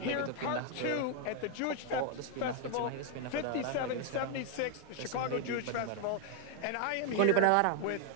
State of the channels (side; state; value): both; different; correlation 0.00